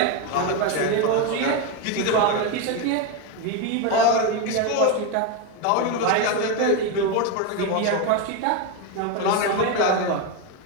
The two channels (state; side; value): different; both; correlation 0.03